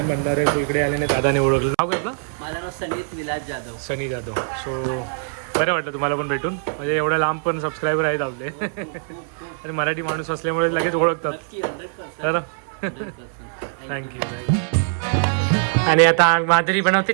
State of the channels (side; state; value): left; silent; 62 dB below the other